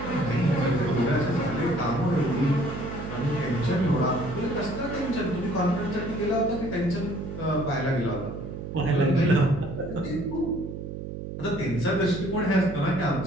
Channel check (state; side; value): noise; right; hum, 8 dB below the sound